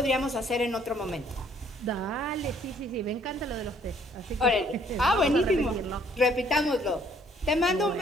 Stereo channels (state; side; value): normal; both; correlation 0.62